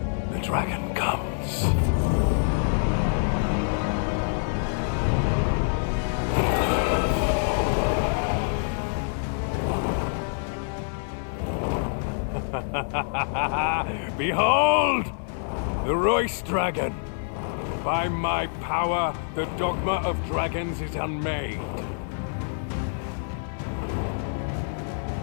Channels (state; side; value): silent; right; 61 dB below the other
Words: The dragon comes. Behold! The Royce Dragon! By my power, the Dogma of Dragons is unmade.